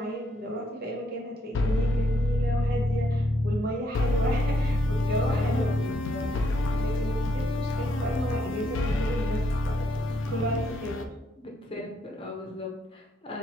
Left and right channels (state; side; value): normal; both; correlation 0.74